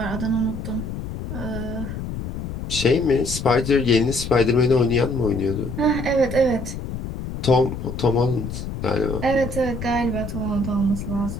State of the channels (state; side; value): noise; left; rumble, 7 dB below the sound